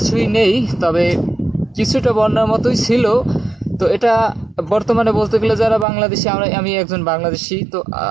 নেই, তবে কিছুটা বন্যার মতোই ছিল। তো এটা বর্তমানে বলতে গেলে যারা বাংলাদেশি, আমি একজন বাংলাদেশি, তো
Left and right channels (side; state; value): left; drops out; at 5.9 s